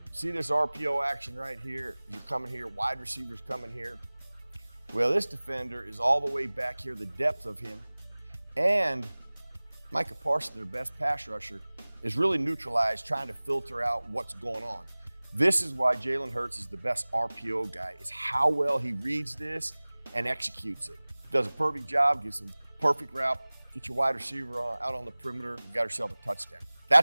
See this RPO action right here? You're coming here, wide receiver's coming here. Well, this defender is all the way back here, the depth of him. And Micah Parsons, their best pass rusher, is really neutralized, trying to filter out what's going on. This is why Jalen Hurts is the best RPO guy, is how well he reads this and executes it. Does a perfect job, gives him perfect route, get your wide receiver out on the perimeter, you got yourself a touchdown.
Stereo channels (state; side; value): inverted; both; correlation -1.00